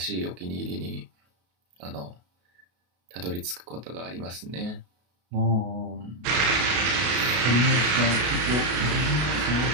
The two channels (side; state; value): left; late; 33 ms